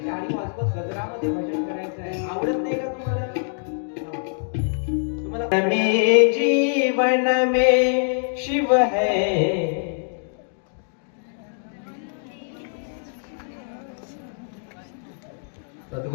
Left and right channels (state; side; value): silent; right; digital silence